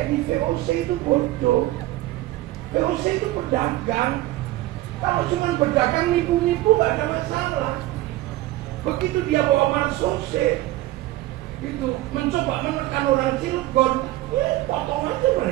di VOC itu bodoh. VOC itu pedagang. Kalau cuma berdagang nipu-nipu gak ada masalah. Begitu dia bawa marsose gitu, mencoba menekan orang Cilegon, ya potong aja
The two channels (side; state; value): left; quieter; 16.8 dB